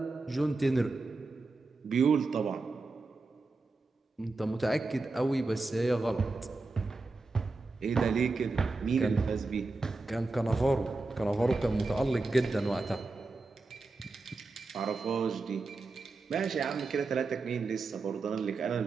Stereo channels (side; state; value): left; quieter; 3.6 dB